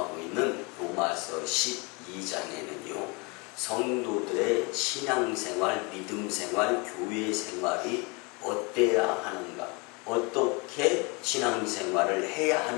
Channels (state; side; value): quieter; right; 29.5 dB